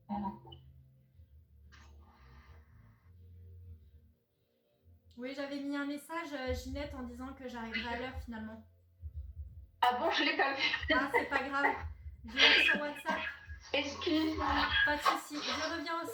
Oui, j'avais mis un message, Ginette, en disant que j'arriverai à l'heure finalement. Ah bon, je l'ai pas vu. Ah, c'est pas grave. Je l'ai mis sur WhatsApp. Excuse-moi. Pas de souci. Je reviens au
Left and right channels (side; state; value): both; identical; correlation 1.00